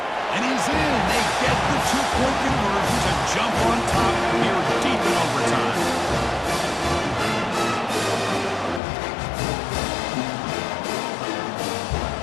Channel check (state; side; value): drops out; right; at 8.8 s